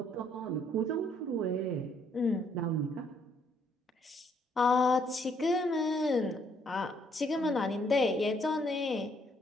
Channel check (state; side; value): normal; both; correlation 0.68